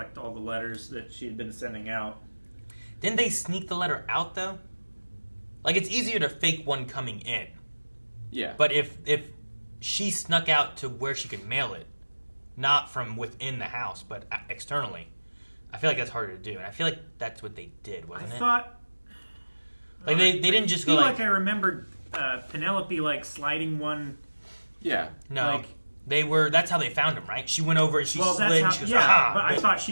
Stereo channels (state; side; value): inverted; both; correlation -1.00